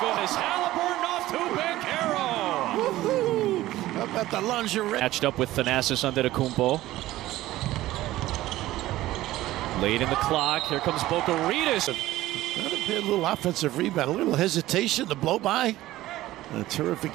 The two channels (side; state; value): left; quieter; 15.9 dB